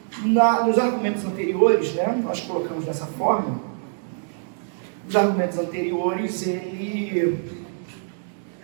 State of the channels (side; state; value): left; silent; digital silence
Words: nos argumentos anteriores, né, nós colocamos dessa forma, nos argumentos anteriores, ele